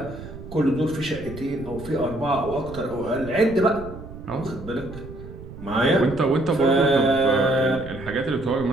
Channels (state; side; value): noise; right; rumble, 13 dB below the sound